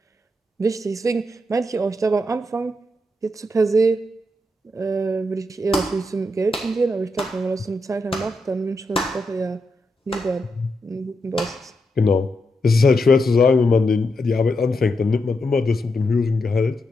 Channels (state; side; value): normal; both; correlation 0.84